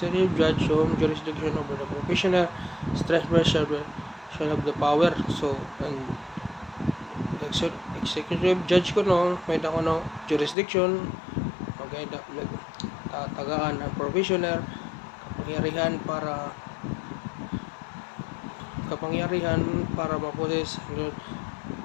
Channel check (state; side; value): drops out; right; at 10.6 s